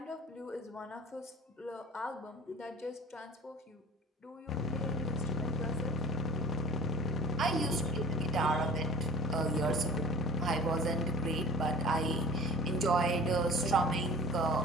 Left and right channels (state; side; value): normal; both; correlation 0.44